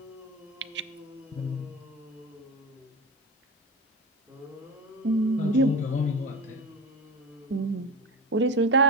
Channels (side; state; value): both; normal; correlation 0.23